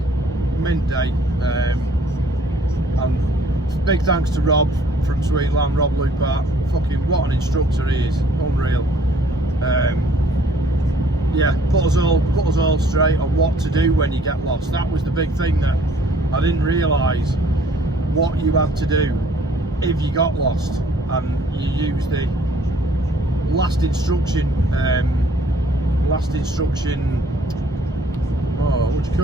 mint day. And big thanks to Rob from Sweetland, Rob Lupart. Fucking what an instructor he is, unreal. Yeah, put us all straight on what to do when you get lost. That was the big thing that I didn't realise, what you had to do if you got lost. And you use the last instruction, oh, what do you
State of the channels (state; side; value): normal; both; correlation 0.59